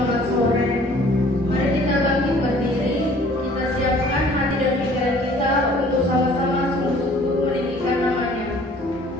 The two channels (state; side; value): normal; both; correlation 0.53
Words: sore. Mari kita bangkit berdiri, kita siapkan hati dan pikiran kita untuk sama-sama sungguh-sungguh meninggikan namanya.